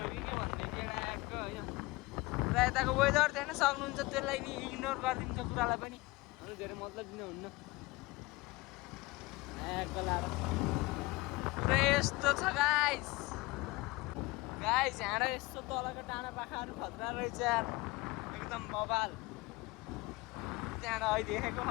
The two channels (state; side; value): quieter; right; 22.5 dB